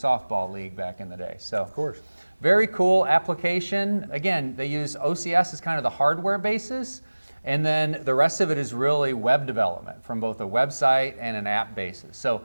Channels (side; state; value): both; inverted; correlation -1.00